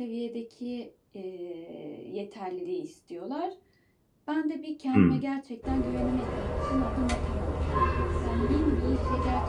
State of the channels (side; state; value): both; identical; correlation 1.00